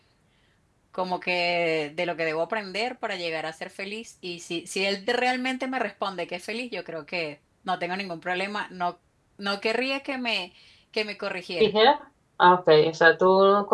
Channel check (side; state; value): both; identical; correlation 1.00